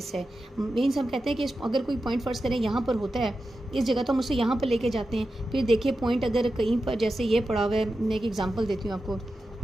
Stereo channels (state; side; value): normal; both; correlation 0.91